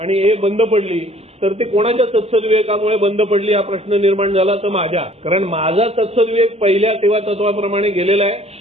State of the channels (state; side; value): late; left; 0.30 ms